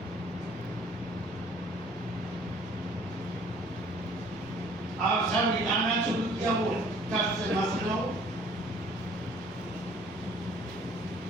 اور سب ہلانا شروع کیا وہ کب سے مسئلہ ہو.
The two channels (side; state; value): right; noise; rumble, 29 dB below the sound